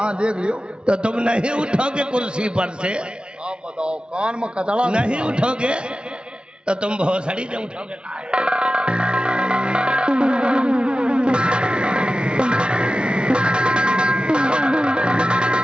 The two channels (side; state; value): left; late; 0.056 ms